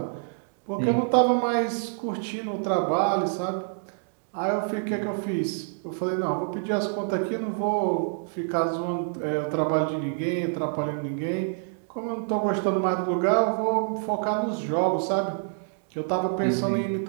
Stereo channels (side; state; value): left; silent; digital silence